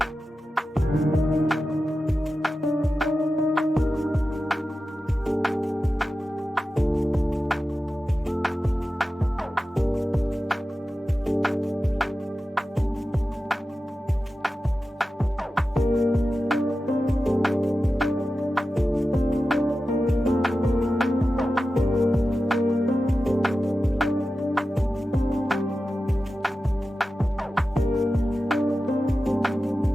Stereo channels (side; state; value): both; normal; correlation 0.93